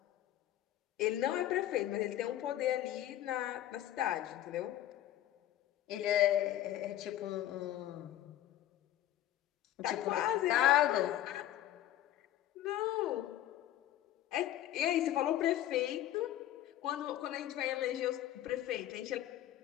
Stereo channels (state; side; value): quieter; right; 13.1 dB